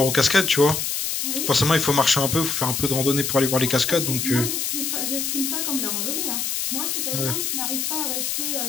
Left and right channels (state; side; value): noise; left; hiss, 1 dB below the sound